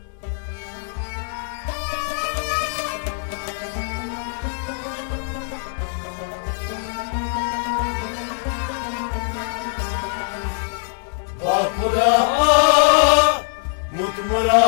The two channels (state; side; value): silent; right; digital silence